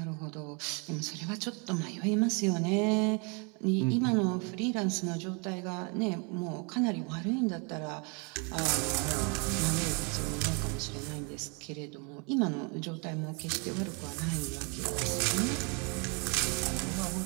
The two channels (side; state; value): left; quieter; 33.4 dB